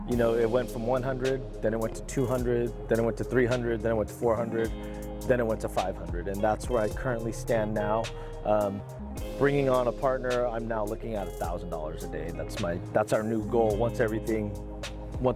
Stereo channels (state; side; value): identical; both; correlation 1.00